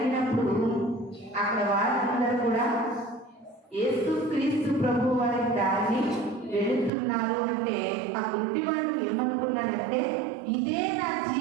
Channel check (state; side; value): drops out; left; at 6.9 s